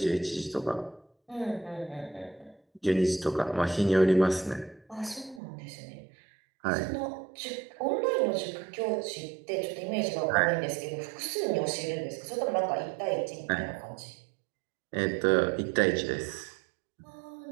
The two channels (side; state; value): left; drops out; at 5.4 s